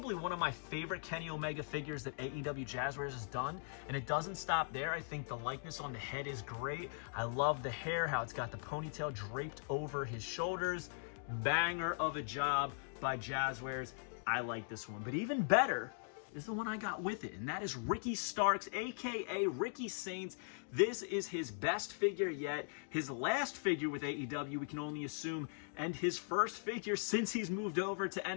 one of my favorite Kenny Omega figures that AEW Jazzwares has done. And it doesn't stop there. I think the likeness on the head is great. I love the hair, how it's got the ponytail draped over his shoulders. Banger of a job by Jazzwares. I like this one. But even better is the one I got with it, and that is Ricky Starks, aka Ricky Saints. This is his best figure yet, his last figure with AEW, we can only assume, and his first figure since he's moved over to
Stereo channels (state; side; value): silent; right; digital silence